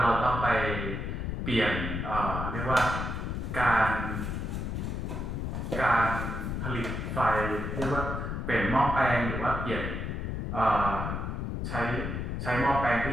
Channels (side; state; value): left; noise; rumble, 3 dB below the sound